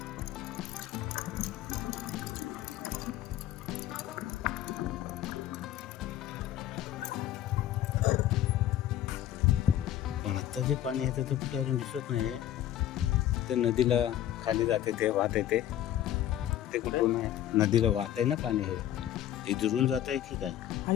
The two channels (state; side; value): quieter; right; 12.1 dB